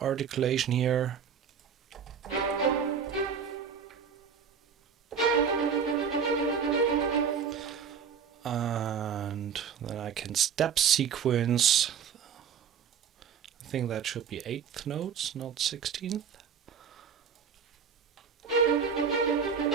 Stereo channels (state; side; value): quieter; left; 7.0 dB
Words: articulation here. And then I can step sequence. I think that should be 8th notes, not 16th.